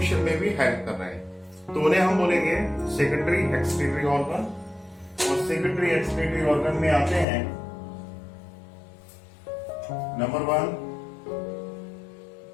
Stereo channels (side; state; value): right; drops out; at 7.2 s